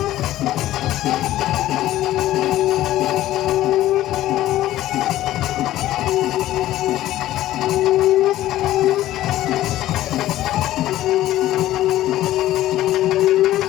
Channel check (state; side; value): quieter; right; 14.4 dB